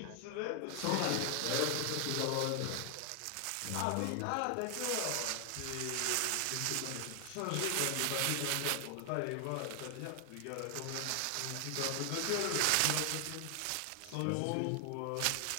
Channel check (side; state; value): both; different; correlation 0.00